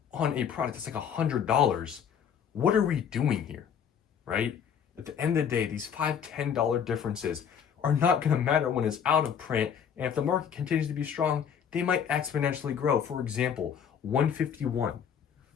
on a product that's like $100, what are we doing here, right? At the end of the day, these $5, $10 differences are not going to matter when it's out of print, and if the market continues to be strong, they might exponentially grow. For example, 151.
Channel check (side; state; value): right; quieter; 7.8 dB